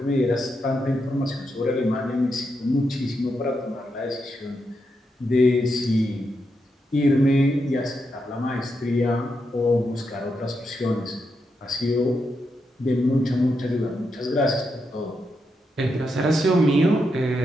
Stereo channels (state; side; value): normal; both; correlation 0.83